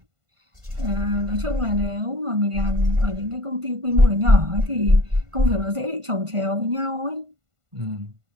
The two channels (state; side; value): late; left; 1.5 ms